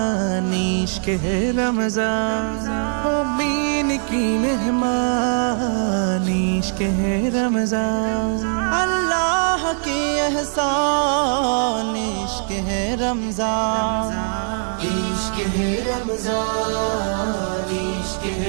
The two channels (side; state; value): left; silent; 58 dB below the other